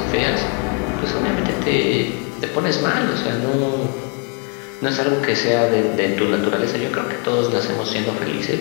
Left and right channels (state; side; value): quieter; right; 33.7 dB